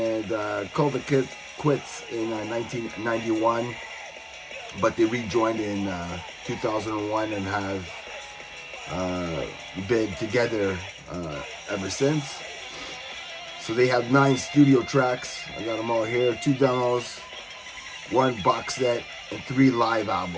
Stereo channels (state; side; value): identical; both; correlation 1.00